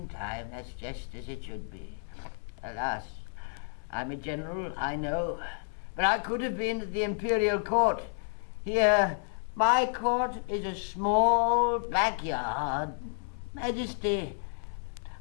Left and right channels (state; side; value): silent; right; 57 dB below the other